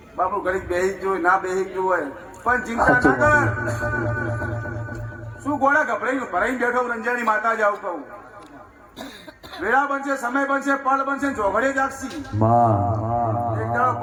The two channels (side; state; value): both; identical; correlation 1.00